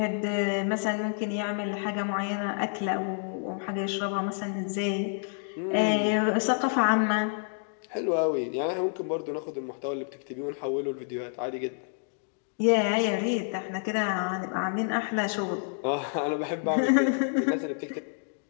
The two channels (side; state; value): right; silent; 59 dB below the other